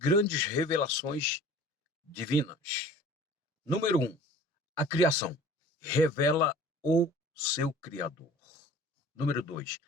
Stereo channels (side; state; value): both; normal; correlation 0.46